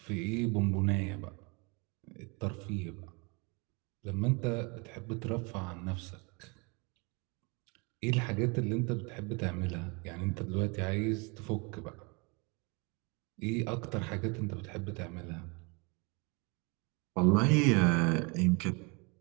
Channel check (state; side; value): quieter; left; 30.2 dB